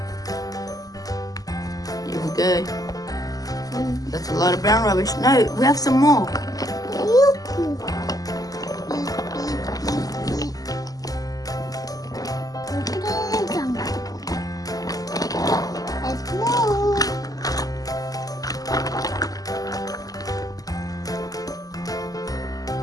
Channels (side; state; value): right; late; 0.17 ms